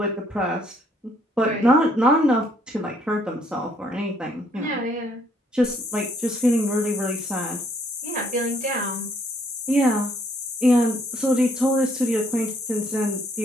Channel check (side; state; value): both; normal; correlation 0.66